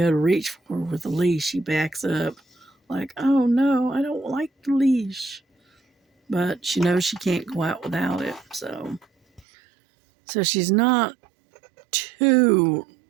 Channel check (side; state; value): left; drops out; at 9.4 s